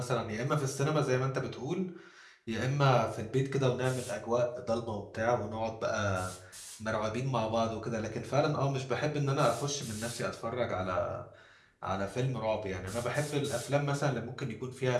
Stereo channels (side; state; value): both; identical; correlation 1.00